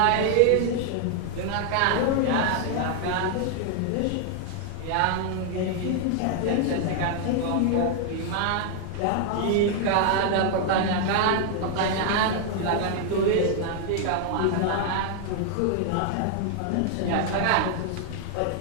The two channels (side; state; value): both; different; correlation 0.00